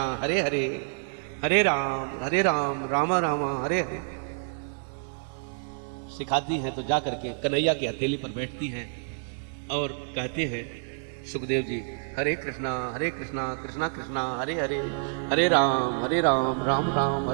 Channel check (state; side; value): silent; left; digital silence